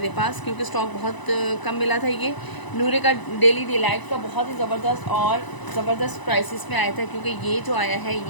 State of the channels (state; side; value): late; right; 1.0 ms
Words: पास, क्योंकि स्टॉक बहुत कम मिला था। ये नूरे का डेली डिलाइट का बहुत ही ज़बरदस्त प्राइसेस में आया था, क्योंकि ये जो आया है